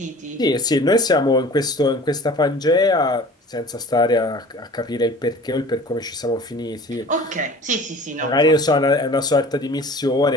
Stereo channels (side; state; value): both; normal; correlation 0.44